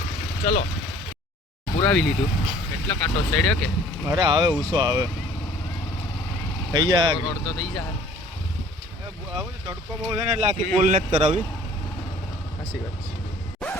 ચલો, પુરાવી લીધું. કેટલો કાંટો ચડ્યો કે? અરે આવે ઉસો આવે થઈ જાય. રોડ તો થઈ જાય. તડકો બહુ છે ને એટલે આખી પુલ નથી કરાવી. સાચી વાત છે.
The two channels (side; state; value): both; normal; correlation 0.52